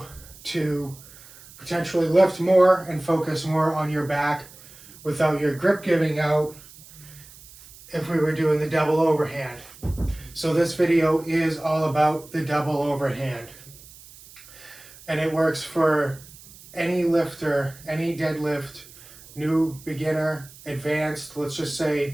to potentially lift more and focus more on your back without your grip giving out if we were doing the double overhand. So this video is all about the double overhand, and it works for any lifter, any deadlift, new, beginner, advanced. Let's just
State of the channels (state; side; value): noise; right; hiss, 20 dB below the sound